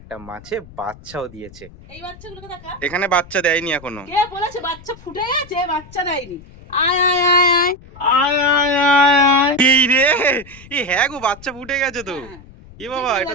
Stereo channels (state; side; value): noise; left; rumble, 20 dB below the sound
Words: মাছে বাচ্চাও দিয়েছে। এই বাচ্চাগুলোকে দেখা, এখানে বাচ্চা দেয়নি এখনো। কে বলেছে বাচ্চা ফুটে গেছে? বাচ্চা দেয়নি। আয় আয় আয় আয় আয় আয় আয় আয়। এই রে, এই হ্যাঁ গো, বাচ্চা ফুটে গেছে তো। এ বাবা,